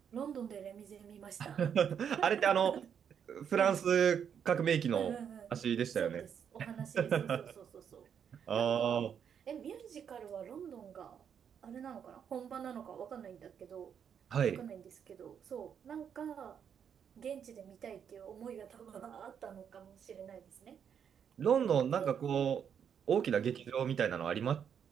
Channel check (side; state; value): left; quieter; 7.9 dB